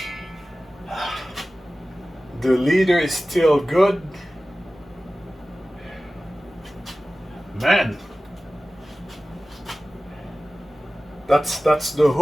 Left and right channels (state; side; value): normal; both; correlation 0.96